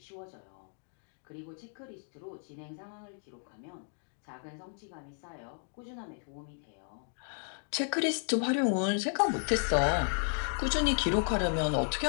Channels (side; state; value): right; silent; 55 dB below the other